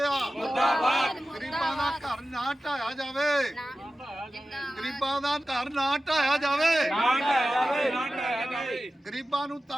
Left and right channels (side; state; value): both; normal; correlation 0.94